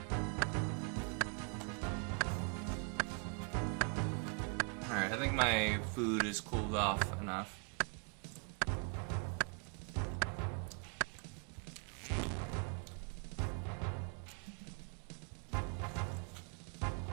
Alright, I think my food is cooled off enough.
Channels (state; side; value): quieter; left; 37.4 dB